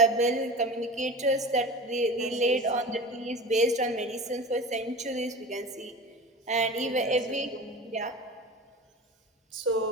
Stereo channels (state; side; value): normal; both; correlation 0.34